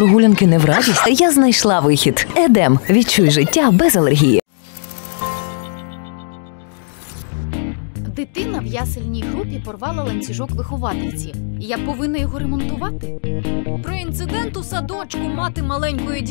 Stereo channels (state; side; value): silent; right; digital silence